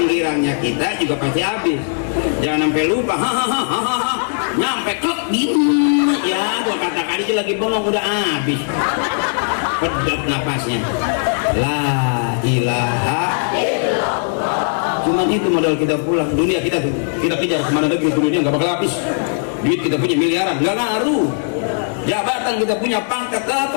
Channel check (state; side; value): silent; right; digital silence